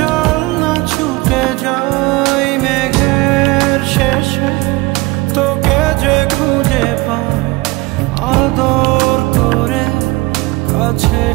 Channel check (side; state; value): left; quieter; 22.4 dB